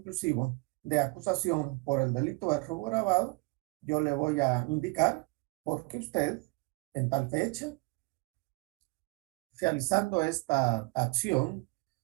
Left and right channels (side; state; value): left; quieter; 27.0 dB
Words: de acusación por el delito de robo agravado, yo le voy a indicar por qué usted, en tal fecha, realizando esta acción